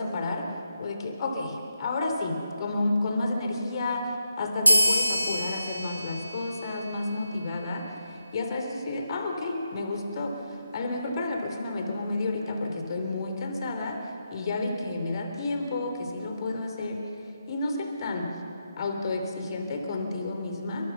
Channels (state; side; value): inverted; both; correlation -0.84